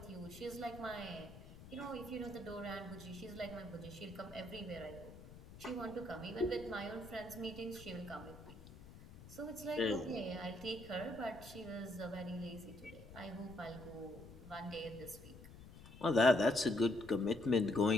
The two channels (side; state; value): left; noise; rumble, 16 dB below the sound